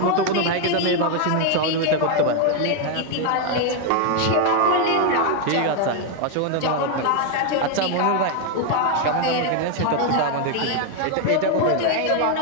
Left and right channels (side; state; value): both; different; correlation 0.01